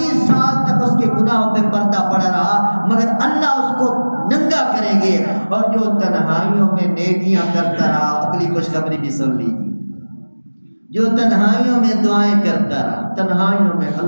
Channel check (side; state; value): both; inverted; correlation -1.00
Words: سال تک اس کے گناہوں پہ پردہ پڑا رہا، مگر اللہ اس کو ننگا کریں گے۔ اور جو تنہائیوں میں نیکیاں کرتا رہا، اگلی خوشخبری بھی سن لیجیے، جو تنہائیوں میں دعائیں کرتا رہا، تنہائیوں میں